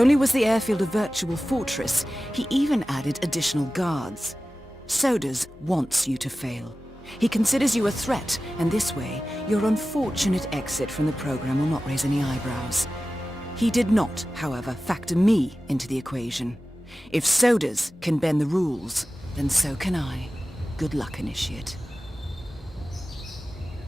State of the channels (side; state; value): both; normal; correlation 0.95